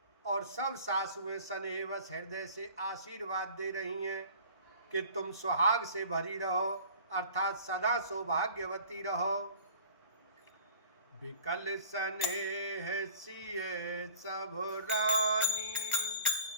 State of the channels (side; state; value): both; inverted; correlation -0.46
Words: और सब सासुएं स्नेहवश हृदय से आशीर्वाद दे रही हैं कि तुम सुहाग से भरी रहो, अर्थात सदा सौभाग्यवती रहो। विकल स्नेह सिए सब रानी,